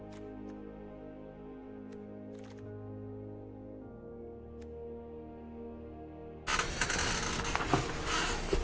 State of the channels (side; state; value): both; identical; correlation 1.00